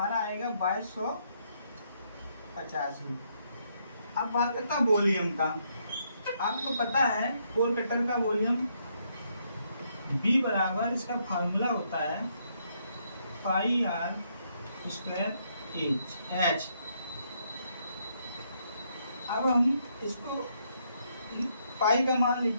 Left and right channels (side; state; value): both; inverted; correlation -0.74